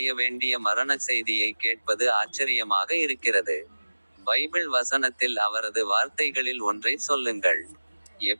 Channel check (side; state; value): both; inverted; correlation -1.00